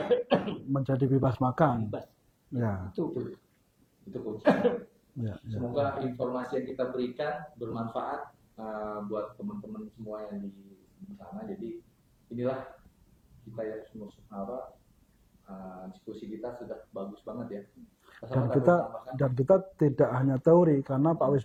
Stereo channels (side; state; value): both; identical; correlation 1.00